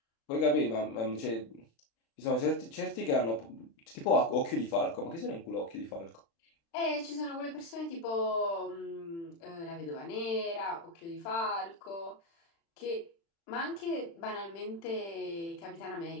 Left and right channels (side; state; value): right; late; 36 ms